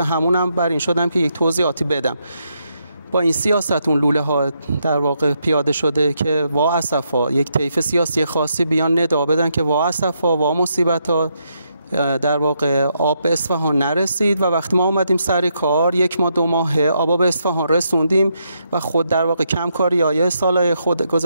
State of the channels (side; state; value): both; inverted; correlation -0.79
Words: بر این شدم که یک توضیحاتی بدم. با این سیاست اون لوله ها در واقع پیاده شده که وا اسفا، یک طیف سیاسی خاصی بیان ندا بدن که وا اسفا، وا مصیبتا، در واقع آب به اصفهان نرسید و وقتی ما اومدیم سر کار 1 ماه 2 ماه آب به اصفهان رسوندیم و خود در واقع کمکاری‌های سالهای